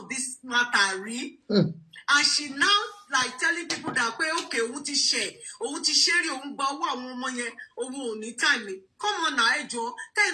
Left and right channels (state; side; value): identical; both; correlation 1.00